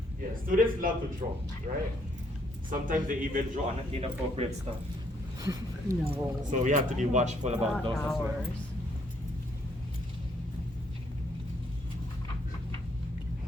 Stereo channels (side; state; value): both; normal; correlation 0.69